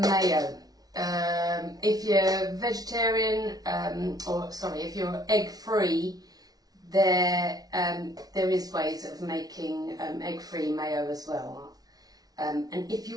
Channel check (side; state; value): left; late; 0.19 ms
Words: If you're vegetarian, if you're egg-free, there is ways of making egg-free mayo as well. And if